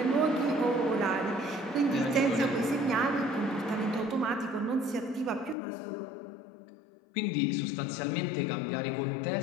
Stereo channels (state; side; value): drops out; right; at 5.6 s